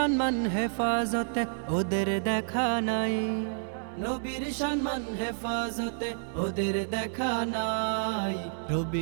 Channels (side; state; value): left; silent; 58 dB below the other